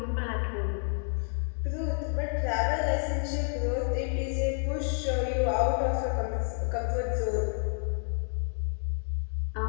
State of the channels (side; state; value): right; silent; 58 dB below the other